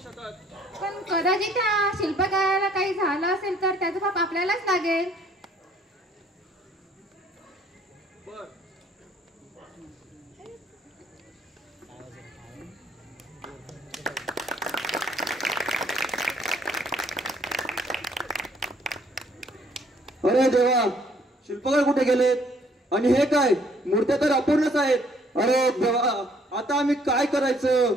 शकत. पण कदाचित त्या शिल्पकाराला काही झालं असेल तर त्याचं पाप आपल्यालाच लागेल. बर. अरे देवा, शिल्पकार कुठे गेलेत? आणि हे काय, मूर्त्या तर अपूर्णच आहेत. अरे देवा, आता आम्ही काय करायचं?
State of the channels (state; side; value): normal; both; correlation 0.62